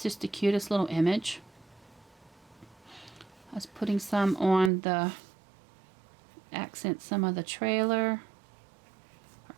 just the cutest little image. I was putting some on the accent, some of the trailer or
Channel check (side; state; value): left; drops out; at 4.7 s